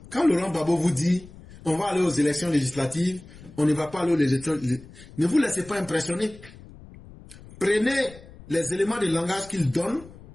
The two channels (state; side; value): noise; left; rumble, 19 dB below the sound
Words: Quand Laurent Gbagbo vous dit on va aller aux élections législatives, on ne va pas aller aux élections, ne vous laissez pas impressionner. Prenez les éléments de langage qu'il donne.